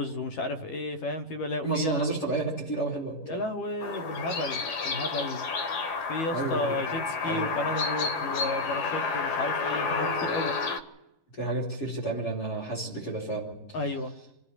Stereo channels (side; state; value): right; late; 11 ms